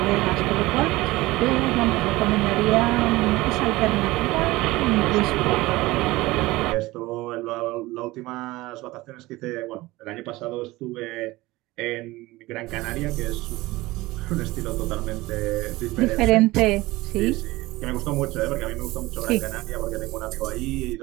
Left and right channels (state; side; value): quieter; left; 19.6 dB